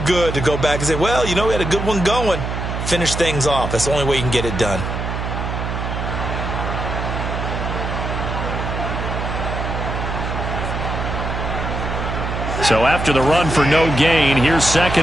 good to go back and say, well, you know, we had a good one going. Finish things off. That's the only way you can get it done. So after the run for no gain, here's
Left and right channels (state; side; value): noise; right; hum, 4 dB below the sound